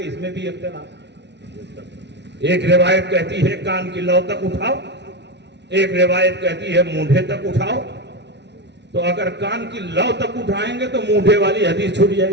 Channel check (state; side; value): late; left; 0.50 ms